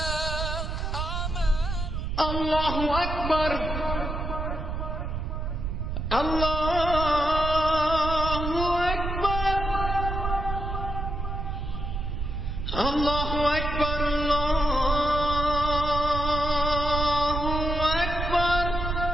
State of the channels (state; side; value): noise; right; rumble, 3 dB below the sound